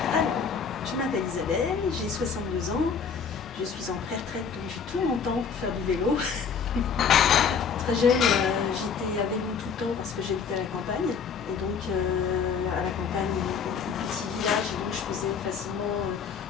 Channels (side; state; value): right; quieter; 6.2 dB